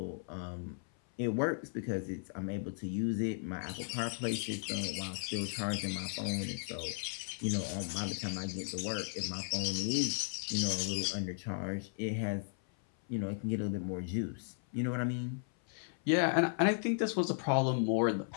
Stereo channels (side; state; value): right; silent; 54 dB below the other